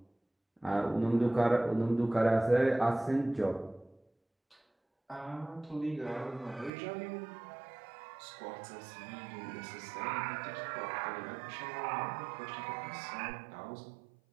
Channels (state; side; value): drops out; left; at 6.7 s